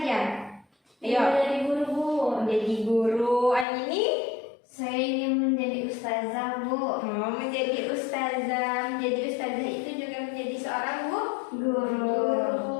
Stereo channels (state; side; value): drops out; right; at 3.7 s